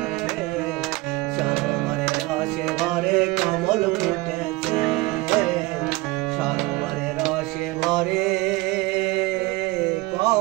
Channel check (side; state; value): left; quieter; 21.5 dB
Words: সরোবরে রসে ভরে কমল ফুটেছে সরোবরে রসে ভরে